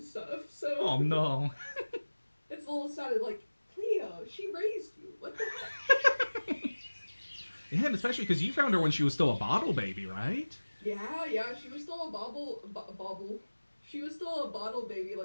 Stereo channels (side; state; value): both; inverted; correlation -1.00